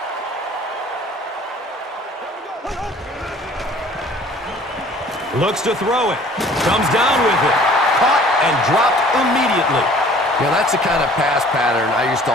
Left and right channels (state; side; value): normal; both; correlation 0.52